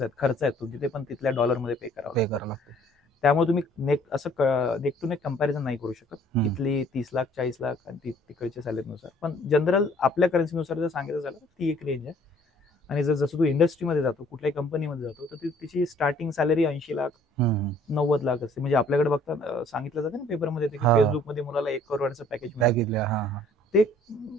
खर्च आहेत तुमचे, ते पण तिथल्या डॉलरमध्ये पे करावं लागतं. त्यामुळे तुम्ही नेक टू नेक कंपॅरिझन नाही करू शकत. इथली 30 लाख 40 लाख आणि तिकडच्या सॅलरीनुसार. पण जनरल आपल्या करन्सीनुसार जर सांगायचं झालं तर ती एक रेंज आहे. आणि जसं तू इंडस्ट्रीमध्ये जातो, कुठल्याही कंपनीमध्ये जातो, तर तिची स्टार्टिंग सॅलरी 80 लाख 90 लाख असते. म्हणजे आपल्याकडे बघता सांगितलं जातं ना पेपरमध्ये, की फेसबुकमध्ये मुलाला 1 करोडचं पॅकेज मिळालं. ते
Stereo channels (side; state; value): both; normal; correlation 0.58